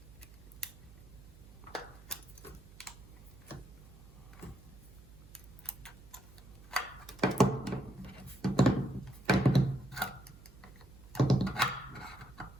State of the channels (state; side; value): noise; right; hum, 20 dB below the sound